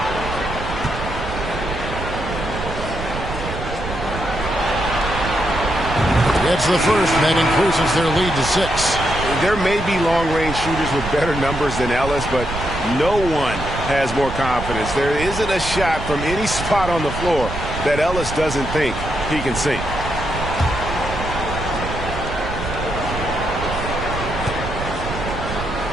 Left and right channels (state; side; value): noise; right; rumble, 7 dB below the sound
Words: It's the first, and that increases their lead to 6. There may be long-range shooters with better numbers than Ellis, but no one has more confidence. There isn't a shot from any spot on the floor that Ellis doesn't think he can sink.